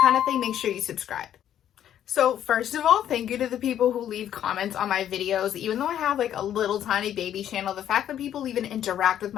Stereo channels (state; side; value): quieter; right; 10.6 dB